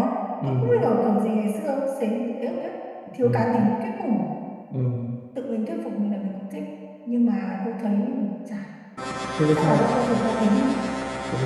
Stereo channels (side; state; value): both; identical; correlation 1.00